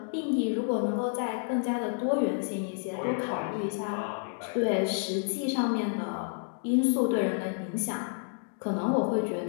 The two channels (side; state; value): right; silent; 58 dB below the other